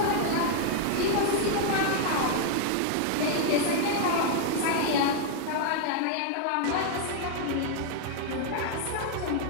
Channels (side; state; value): both; different; correlation 0.00